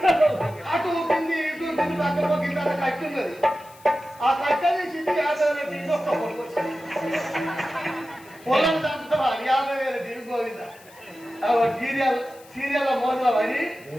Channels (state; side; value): noise; left; hiss, 24 dB below the sound